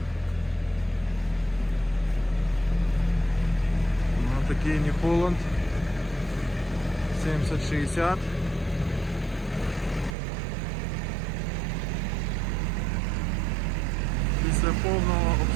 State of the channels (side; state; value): left; drops out; at 10.2 s